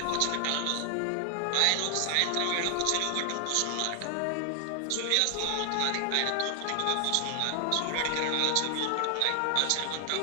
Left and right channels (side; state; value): both; different; correlation 0.00